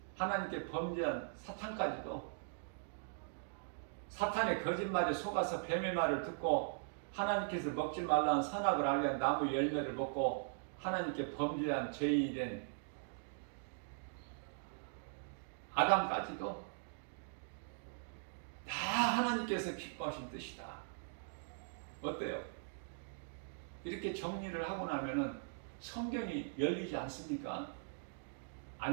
하나님께 범죄한 사탄까지도, 사탄의 거짓말에 속아서 뱀의 말을 듣고 하나님께서 먹지 말라는 선악을 알게 한 나무 열매를 먹고 하나님께 범죄한 죄인이 된 아담까지도 다 하나님께서 기뻐하신 뜻이다. 어때요? 이렇게 정리를 하고 나면은 성경이 열리지 않습니까?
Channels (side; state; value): left; silent; digital silence